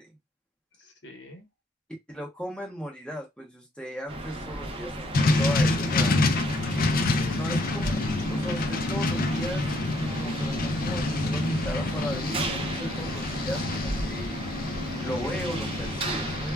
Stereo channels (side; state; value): both; normal; correlation 0.69